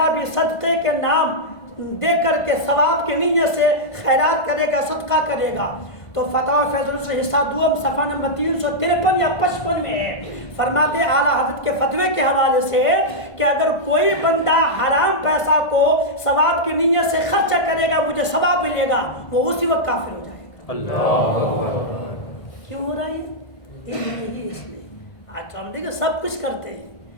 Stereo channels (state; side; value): late; right; 1.5 ms